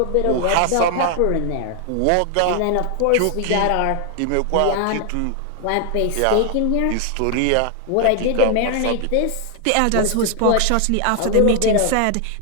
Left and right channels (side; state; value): both; different; correlation 0.00